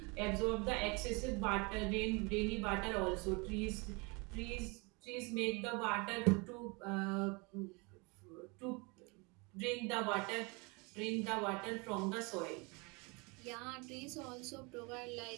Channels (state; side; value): quieter; left; 29.1 dB